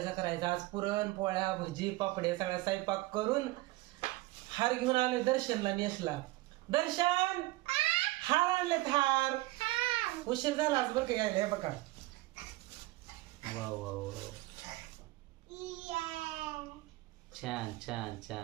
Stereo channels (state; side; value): quieter; left; 19.9 dB